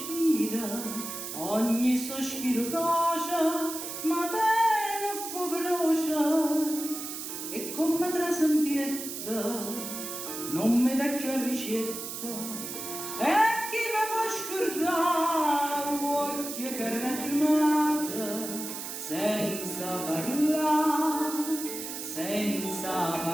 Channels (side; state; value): right; noise; hiss, 7 dB below the sound